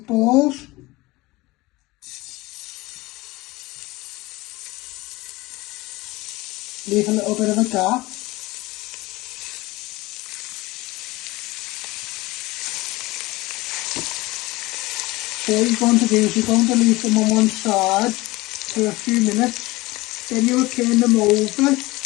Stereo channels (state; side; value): quieter; right; 20.8 dB